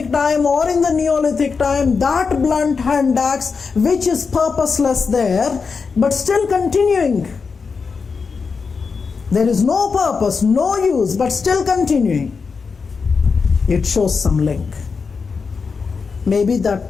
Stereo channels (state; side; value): quieter; right; 5.1 dB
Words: time or in the Neolithic time, that blunt hand axe, which is purposeless there, but still continuing. There is no purpose, no use, but still continuing. It shows some link. Maybe that